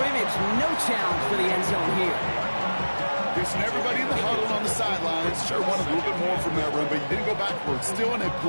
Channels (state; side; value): inverted; both; correlation -1.00